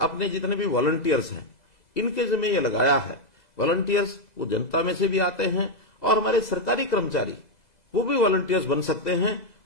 अपने जितने भी वॉलंटियर्स हैं इनके जिम्मे ये लगाया है। वॉलंटियर्स वो जनता में से भी आते हैं और हमारे सरकारी कर्मचारी वो भी वॉलंटियर्स बन सकते हैं।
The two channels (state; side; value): late; right; 2.0 ms